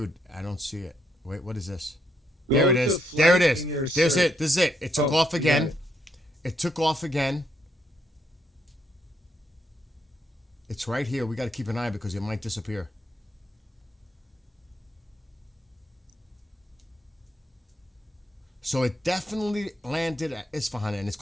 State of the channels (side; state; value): both; normal; correlation 0.76